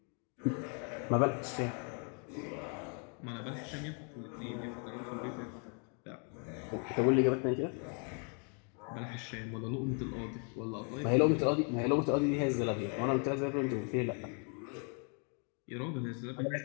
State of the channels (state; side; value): quieter; right; 39.3 dB